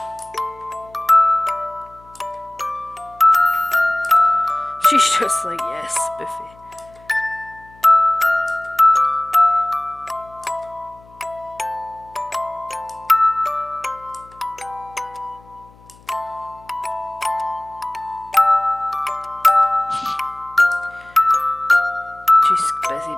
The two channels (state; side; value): noise; left; hum, 26 dB below the sound